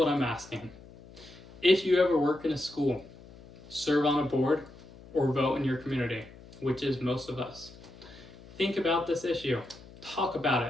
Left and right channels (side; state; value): left; noise; hum, 20 dB below the sound